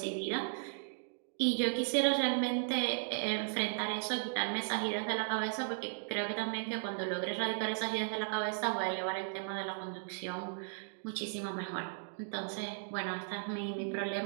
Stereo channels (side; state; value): left; silent; digital silence